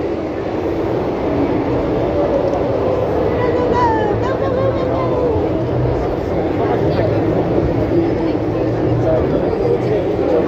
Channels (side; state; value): both; identical; correlation 1.00